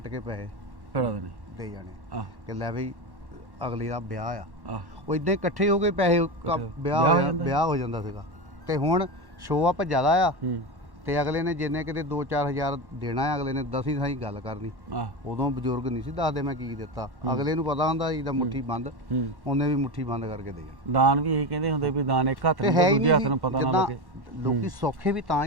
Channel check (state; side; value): late; left; 1.1 ms